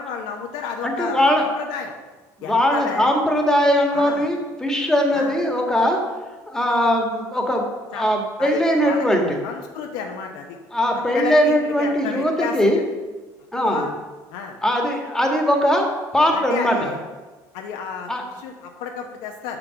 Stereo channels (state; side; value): normal; both; correlation 0.70